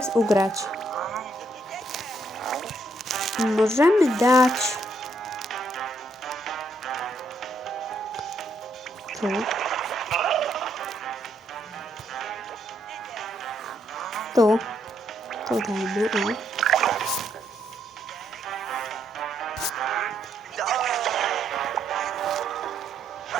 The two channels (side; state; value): both; normal; correlation 0.74